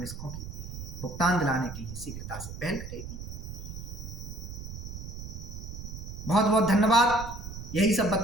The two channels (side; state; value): right; noise; rumble, 9 dB below the sound